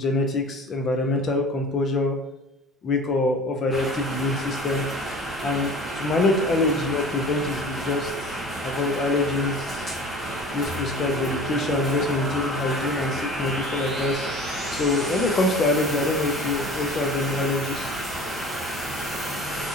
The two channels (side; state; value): both; normal; correlation 0.41